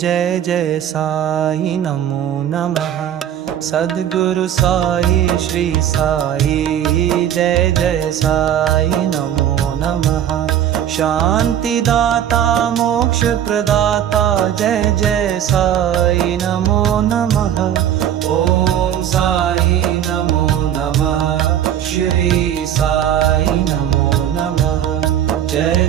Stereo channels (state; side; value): quieter; left; 10.3 dB